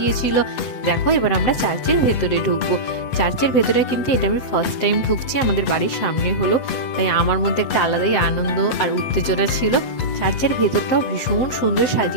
দেখো এবার আমরা চার্চের ভেতরে ঢুকবো। চার্চের ভেতরে কিন্তু এটা আমি ফার্স্ট টাইম ঢুকছি, আমাদের বাড়ির সামনে হলো, তাই আমার মধ্যে একটা আলাদাই আনন্দ আর উত্তেজনা ছিল। চার্চের ভেতরটাও ভীষণ সুন্দর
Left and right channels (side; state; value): right; late; 8.1 ms